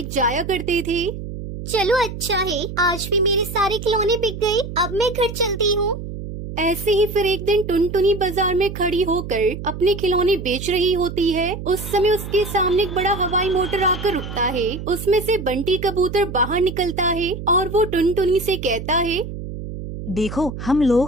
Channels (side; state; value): right; noise; hum, 9 dB below the sound